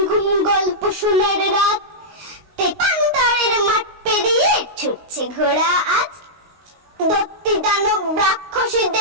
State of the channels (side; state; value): left; late; 19 ms